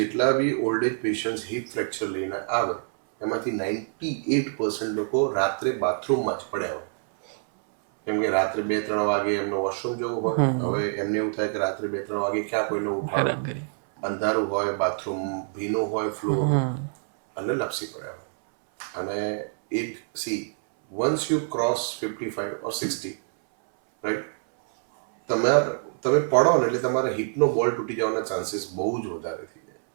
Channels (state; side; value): silent; left; 61 dB below the other